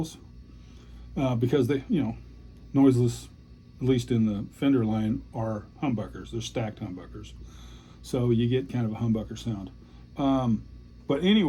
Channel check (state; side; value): identical; both; correlation 1.00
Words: because they, noiseless, at least in the Fender line, are humbuckers. They're stacked humbuckers, so you get kind of a humbucker sound. But